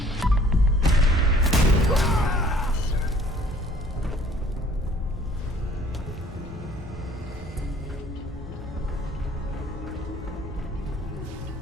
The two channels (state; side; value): normal; both; correlation 0.55